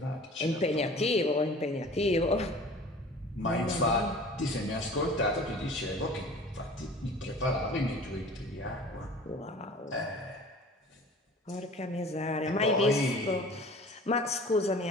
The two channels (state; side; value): normal; both; correlation 0.44